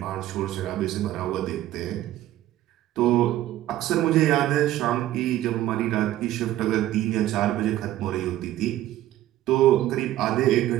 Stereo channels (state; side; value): quieter; left; 13.9 dB